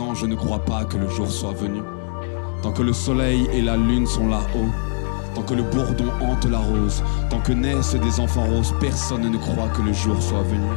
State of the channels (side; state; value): right; silent; digital silence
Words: ne croient pas que le jour soit venu. Tant que le soleil et la lune sont là-haut, tant que le bourdon hante la rose, tant que naissent des enfants roses, personne ne croit que le jour soit venu.